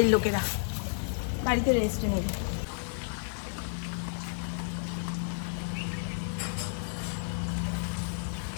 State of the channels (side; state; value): right; silent; digital silence